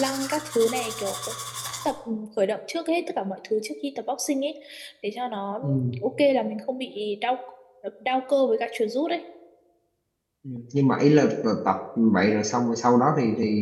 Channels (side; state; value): both; identical; correlation 1.00